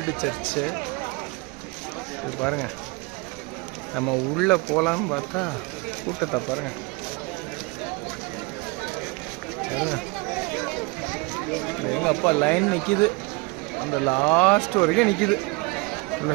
சர்ச்சு. இது பாருங்கள், நம்ம உள்ளே போகலான்னு பார்த்தா கூட்டத்தை பாருங்கள். எங்கள் அப்பா லைன் நிற்கிது, அந்த லாஸ்ட் வரைக்கும் நிற்கிது. உள்ள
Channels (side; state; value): left; quieter; 26.9 dB